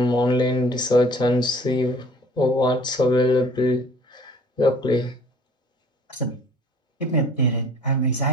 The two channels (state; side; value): normal; both; correlation 0.51